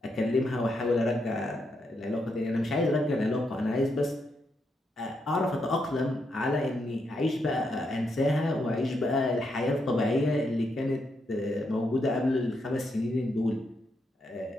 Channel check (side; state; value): both; normal; correlation 0.80